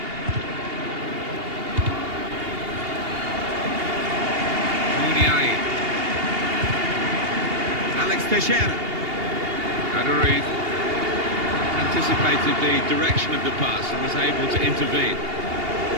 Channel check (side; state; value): left; late; 2.8 ms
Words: Muniain. Alex Teixeira. Aduriz. Anticipated the direction of the pass and was able to intervene.